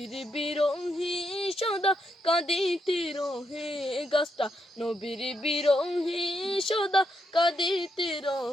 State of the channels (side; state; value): both; normal; correlation 0.80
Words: বিরোহী সদা কাঁদিতে রহে, গাছটা নবীর বিরোহী সদা কাঁদিতে